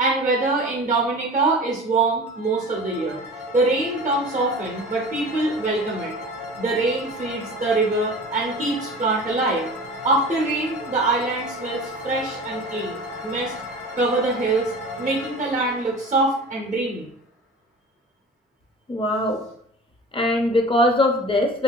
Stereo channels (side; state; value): both; normal; correlation 0.37